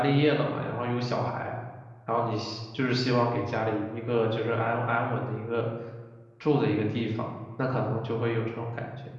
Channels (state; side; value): identical; both; correlation 1.00